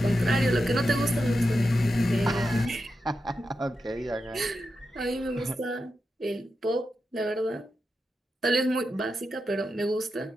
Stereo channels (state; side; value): normal; both; correlation 0.88